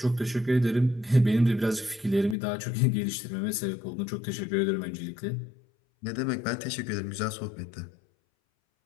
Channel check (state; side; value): drops out; right; at 2.4 s